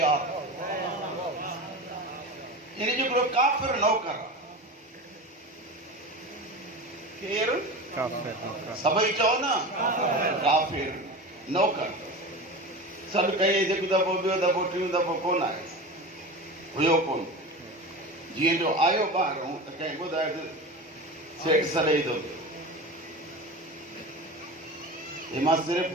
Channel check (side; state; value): both; normal; correlation 0.28